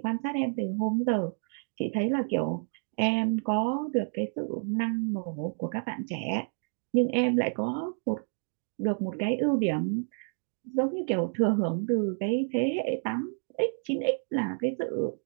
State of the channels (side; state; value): left; silent; 58 dB below the other